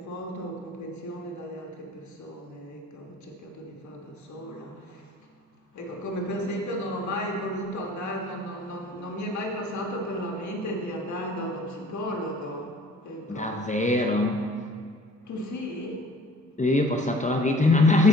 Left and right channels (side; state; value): both; normal; correlation 0.50